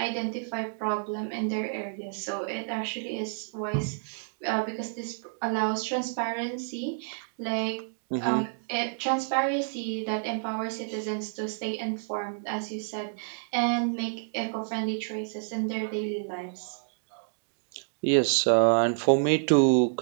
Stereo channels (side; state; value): left; silent; digital silence